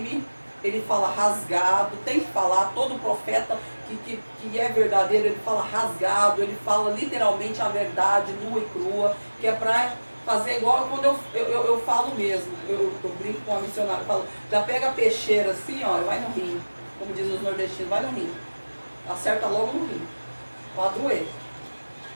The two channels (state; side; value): inverted; both; correlation -1.00